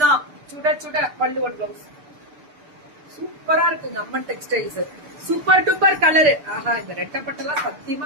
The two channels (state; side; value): late; left; 6.8 ms